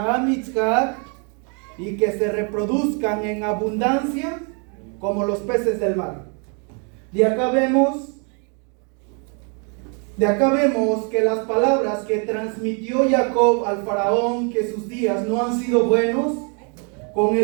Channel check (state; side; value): quieter; left; 37.6 dB